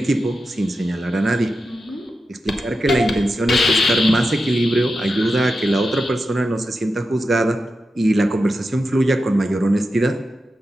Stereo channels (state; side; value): normal; both; correlation 0.90